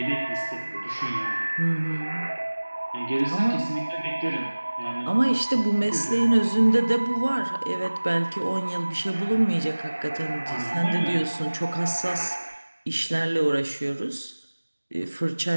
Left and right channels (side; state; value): both; inverted; correlation -1.00